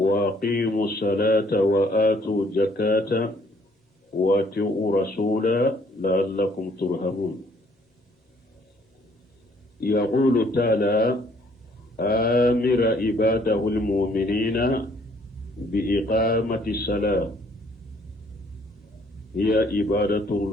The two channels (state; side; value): normal; both; correlation 0.63